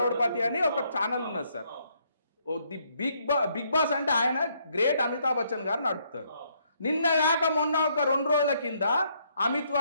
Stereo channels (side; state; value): both; inverted; correlation -0.71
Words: అని ఒక ఛానల్ ఉన్నది సార్. ది బిగ్ బాస్ అంటే ఆయన గ్రేట్ అమితాబ్ బచ్చన్ గారు నడుపుతారు. నిన్న కాక మొన్న ఒక 2 రోజుల కింద అమిత్